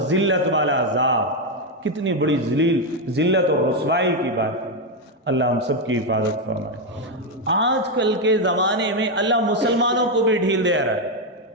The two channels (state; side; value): normal; both; correlation 0.04